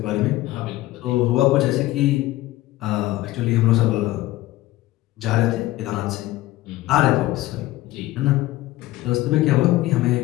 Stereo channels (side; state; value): right; quieter; 16.9 dB